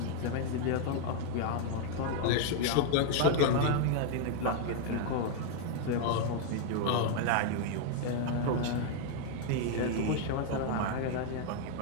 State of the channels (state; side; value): different; both; correlation 0.00